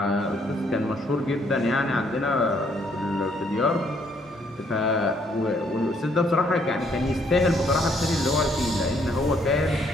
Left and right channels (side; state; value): both; normal; correlation 0.68